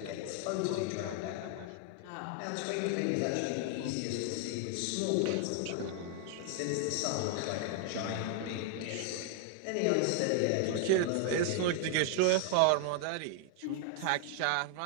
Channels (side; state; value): both; different; correlation 0.00